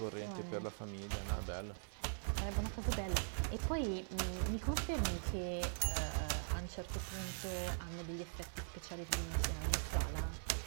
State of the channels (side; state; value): left; silent; digital silence